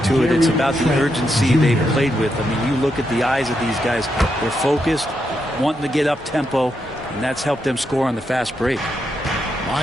to it, it's about the urgency they've played with. I mean, you look at the eyes of these guys. They're focused, wanting to get up tempo, and that's helped them score on the fast break.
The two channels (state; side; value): normal; both; correlation 0.82